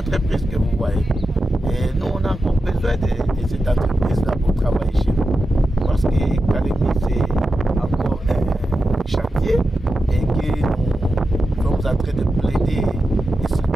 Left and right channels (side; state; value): both; normal; correlation 0.90